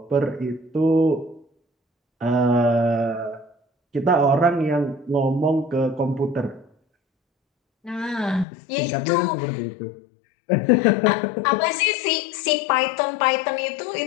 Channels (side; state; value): right; drops out; at 8.5 s